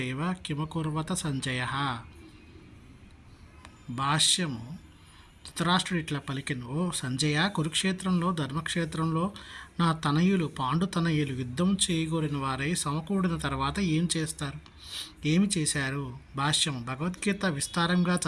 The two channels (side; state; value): both; identical; correlation 1.00